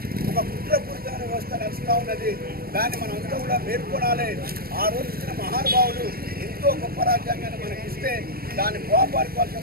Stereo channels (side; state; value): left; late; 0.44 ms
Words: ఒక కుట్రపూరితమైన వ్యవస్థ నడుస్తూ ఉన్నది. దాన్ని మనం అంతా కూడా పేర్కొనాలి. ఆ రోజు ఇచ్చిన మహానుభావులు ఎంతో గొప్ప రాజ్యాంగాన్ని మనకి ఇస్తే దాన్ని కాపాడుకోవాల్సిన